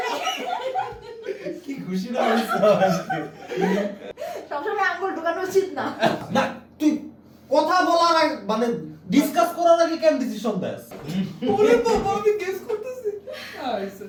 কি খুশি না হইছো আজকে। সবসময় আঙ্গুল ঢোকানো উচিত না। না তুই কথা বলার আগে মানে ডিসকাস করার আগে কেন ডিসিশন দেস? ওরে বাবা আমি গেস করতেছি। আইছে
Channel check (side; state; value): both; identical; correlation 1.00